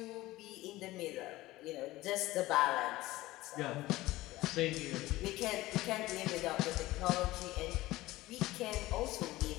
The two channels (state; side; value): quieter; right; 17.9 dB